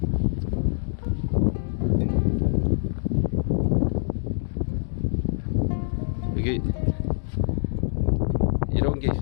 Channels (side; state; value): right; silent; digital silence